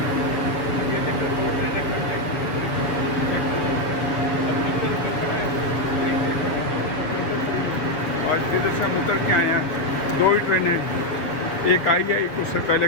और जिधर से हम उतर के आए हैं 2 ही ट्रेनें, एक आई है एक उससे पहले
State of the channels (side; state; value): right; late; 7.4 ms